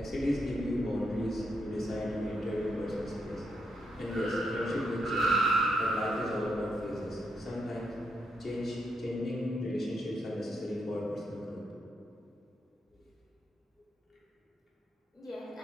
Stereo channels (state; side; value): normal; both; correlation 0.80